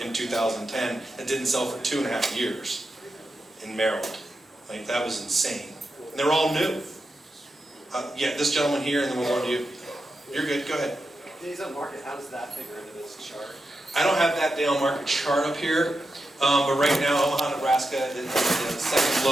in 2010 that didn't sell for 2.5 years in Maryland. Like, that was insane. And they're all new. Yeah, this gentleman here, and then we'll go to you. You're good, go ahead. Days on market, how does that figure into this chart? I don't have that day on market chart up here, but right now Omaha, Nebraska is the second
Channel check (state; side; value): normal; both; correlation 0.88